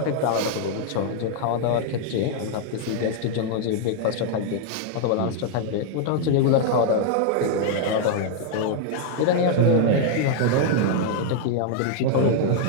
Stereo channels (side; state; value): both; different; correlation 0.00